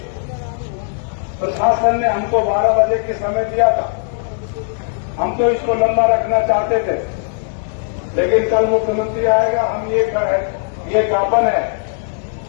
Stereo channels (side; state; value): right; silent; digital silence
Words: प्रशासन ने हमको 12 बजे की समय दिया था, हम तो इसको लंबा रखना चाहते थे, लेकिन कल मुख्यमंत्री आएगा, हम ये ज्ञापन है,